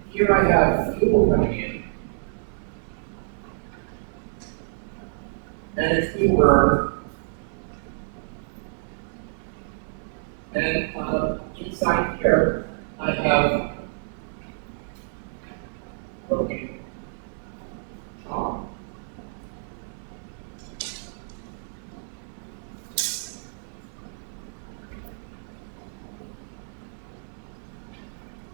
here I have fuel coming in, and it's being burned. And inside here, I have broken chalk.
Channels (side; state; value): left; silent; digital silence